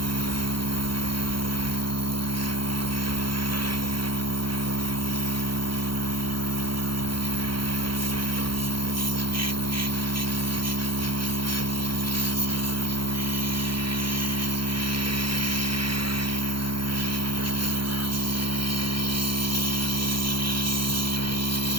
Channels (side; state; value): left; late; 0.73 ms